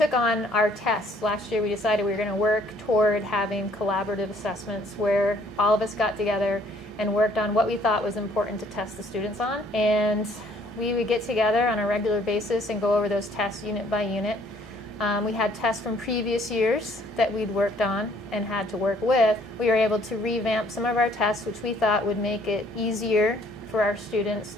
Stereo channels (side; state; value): both; normal; correlation 0.62